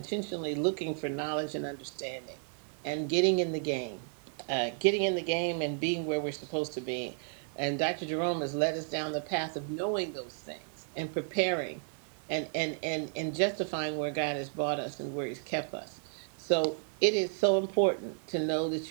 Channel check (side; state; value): left; silent; 56 dB below the other